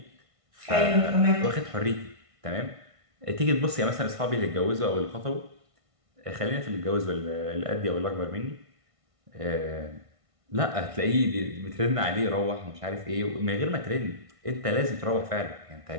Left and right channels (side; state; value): left; late; 1.5 ms